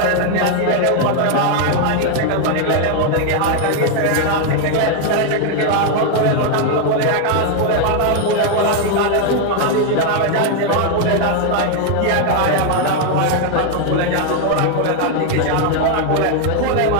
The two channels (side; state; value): both; different; correlation 0.01